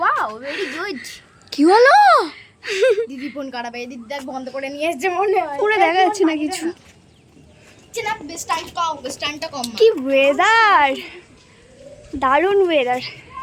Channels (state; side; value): identical; both; correlation 1.00